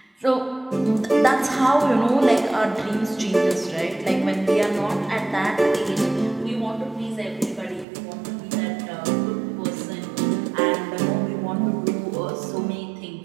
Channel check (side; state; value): left; drops out; at 7.9 s